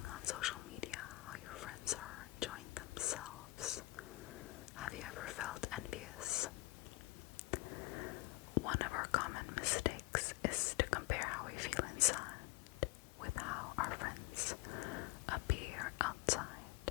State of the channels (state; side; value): quieter; right; 20.6 dB